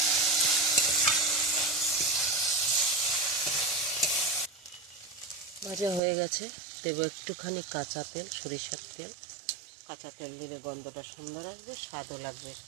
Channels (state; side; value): drops out; left; at 6.0 s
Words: ভাজা হয়ে গেছে, দেব একটুখানি কাঁচা তেল, সরিষার তেল। কাঁচা তেল দিলে গন্ধটা সুন্দর আসবে, স্বাদও লাগবে